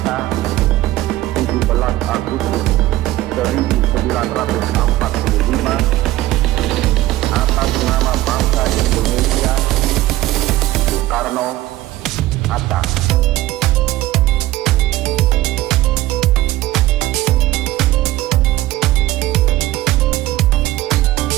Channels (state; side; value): quieter; left; 16.2 dB